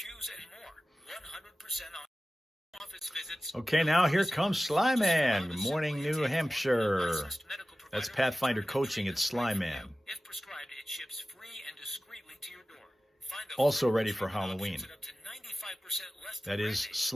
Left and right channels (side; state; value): both; normal; correlation 0.95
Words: and more. 100% off. Office visits. Okay, now here comes Sly Man. Good morning, New Hampshire. That's Pathfinder Coaching at Sly Man. If prescribed, it ships free and discreetly to your door. Find a Also full ready for prescription Halloween. options at up to 95% less That than is branded.